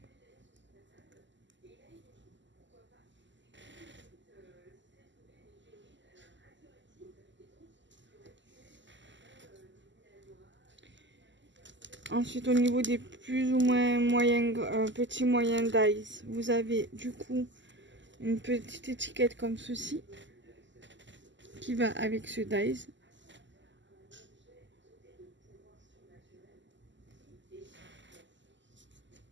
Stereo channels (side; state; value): left; late; 0.54 ms